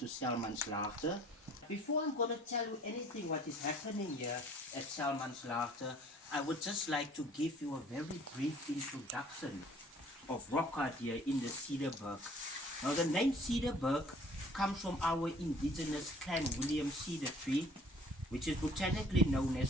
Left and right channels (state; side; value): normal; both; correlation 0.53